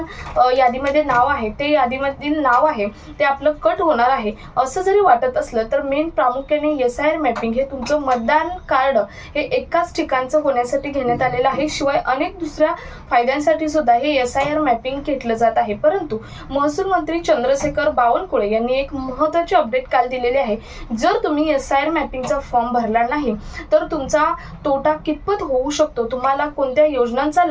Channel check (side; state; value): both; identical; correlation 1.00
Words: यादीमध्ये नाव आहे ते यादीमधील नाव आहे ते आपलं कट होणार आहे, असं जरी वाटत असलं तर मेन प्रामुख्याने SIR मॅपिंग हे तुमचं मतदान कार्ड हे एकाच ठिकाणचं होण्यासाठी घेण्यात आलेलं आहे। शिवाय अनेक दुसऱ्या फायद्यांसाठी सुद्धा हे SIR मॅपिंग घेतलं जात आहे। परंतु महसूल मंत्री चंद्रशेखर बावनकुळे यांनी एक महत्त्वाची अपडेट काल दिलेली आहे। जर तुम्ही SIR मॅपिंगचा फॉर्म भरला नाही तर तुमचा तोटा कितपत होऊ शकतो, तुम्हाला कोणत्या योजनांचा